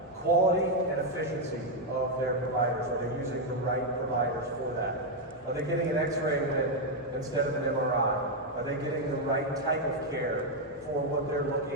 Quality and efficiency of their providers. Are they using the right providers for that? Are they getting an X-ray instead of an MRI? Are they getting the right type of care for what they're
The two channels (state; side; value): normal; both; correlation 0.01